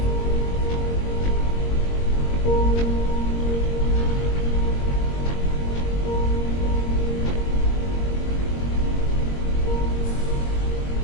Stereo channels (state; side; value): late; right; 22 ms